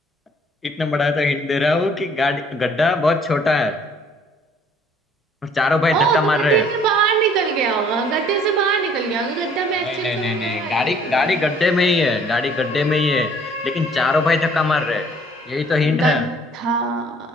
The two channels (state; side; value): normal; both; correlation 0.58